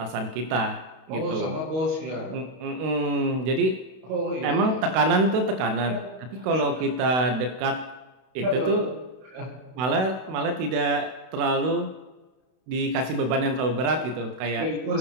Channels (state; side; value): late; left; 32 ms